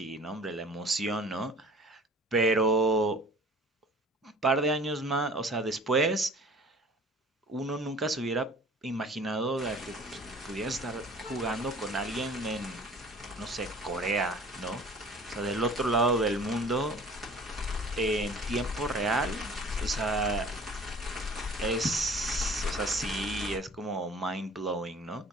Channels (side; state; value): both; normal; correlation 0.47